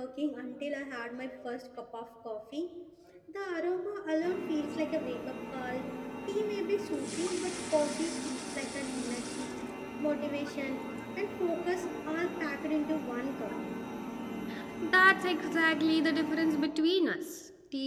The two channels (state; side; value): identical; both; correlation 1.00